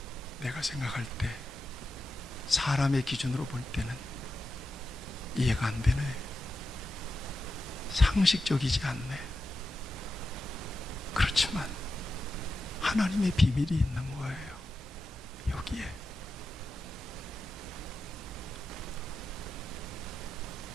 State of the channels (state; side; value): normal; both; correlation 0.90